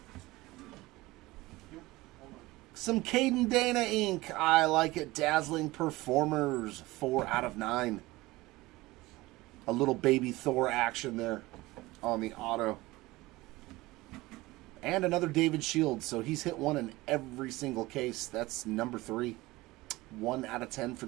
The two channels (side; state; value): left; quieter; 19.9 dB